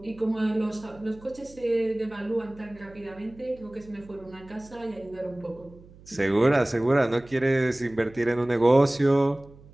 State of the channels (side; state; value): right; noise; hum, 23 dB below the sound